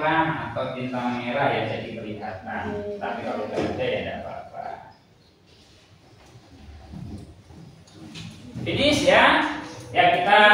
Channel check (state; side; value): identical; both; correlation 1.00